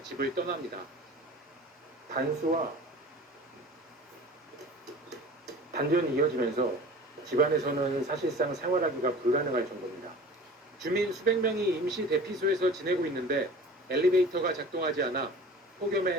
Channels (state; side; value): normal; both; correlation 0.41